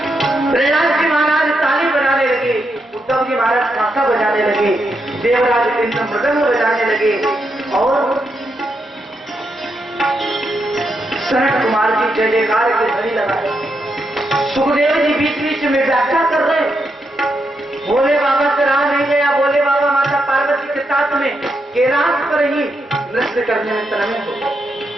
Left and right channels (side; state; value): both; normal; correlation 0.82